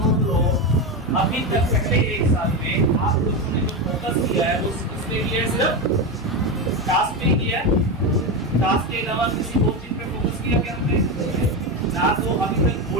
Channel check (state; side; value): normal; both; correlation 0.15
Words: लोग अभी तक पहले एक साल में आप लोगों ने जो फोकस किया है वो किसपे किया है? सिर्फ टास्क पे किया है। टास्क के अलावा किसी और चीज पे फोकस किया क्या हमने? ना तो अभी तक